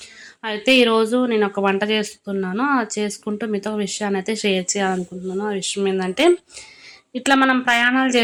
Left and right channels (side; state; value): both; identical; correlation 1.00